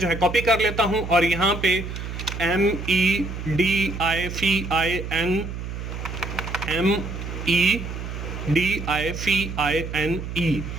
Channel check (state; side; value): noise; right; hum, 7 dB below the sound